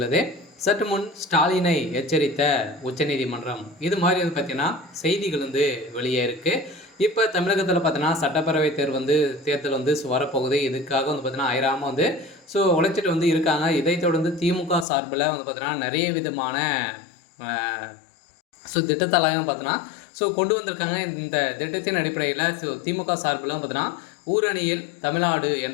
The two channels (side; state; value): right; drops out; at 14.9 s